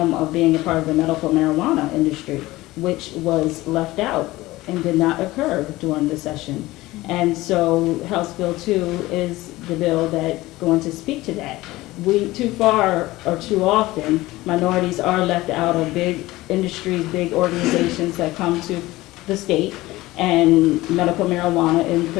of being a part of the medical marijuana industry, which was left out and did not occur during the session. And so House Bill 2 is the bill that's going to speak to that. Too far or too often, minorities are left out of big industries, big organizations that come to the state, and medical marijuana in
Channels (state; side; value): quieter; right; 18.6 dB